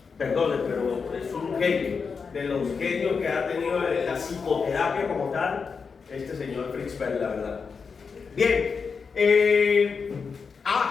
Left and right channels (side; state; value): right; quieter; 5.4 dB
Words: perdone, pero es un genio. De los genios que ha tenido la psicoterapia como tal, este señor Fritz Perls, la verdad. Bien,